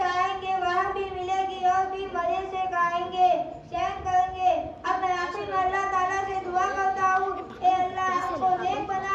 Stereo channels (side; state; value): both; identical; correlation 1.00